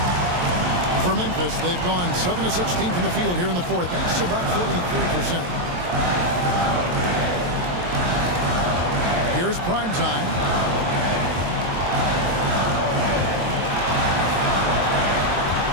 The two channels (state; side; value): late; left; 23 ms